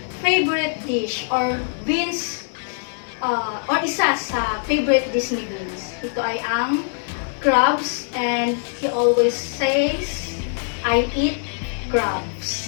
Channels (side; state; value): right; silent; digital silence